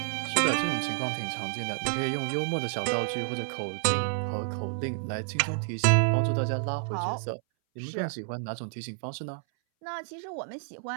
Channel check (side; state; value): left; silent; 58 dB below the other